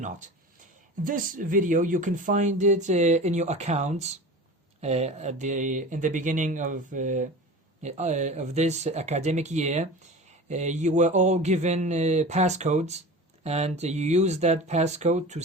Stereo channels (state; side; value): normal; both; correlation 0.34